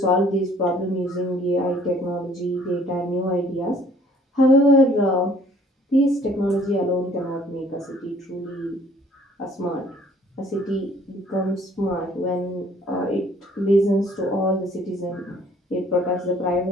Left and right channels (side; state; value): both; normal; correlation 0.57